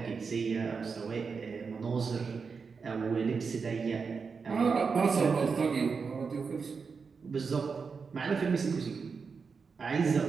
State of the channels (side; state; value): left; quieter; 5.3 dB